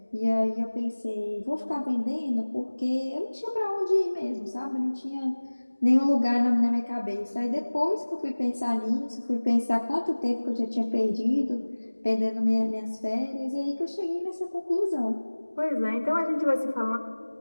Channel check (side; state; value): both; inverted; correlation -1.00